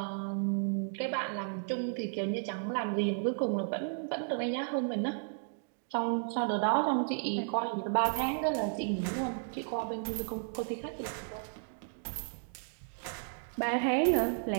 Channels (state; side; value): silent; left; digital silence